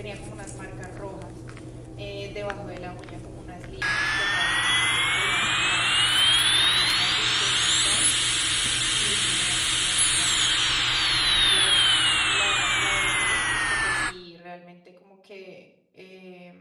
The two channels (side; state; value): both; identical; correlation 1.00